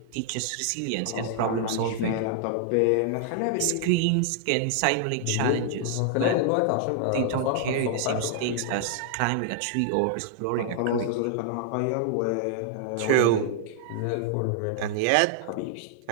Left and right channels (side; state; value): both; different; correlation 0.00